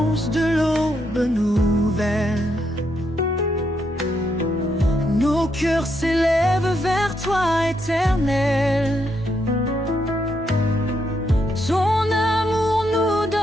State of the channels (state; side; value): normal; both; correlation 0.78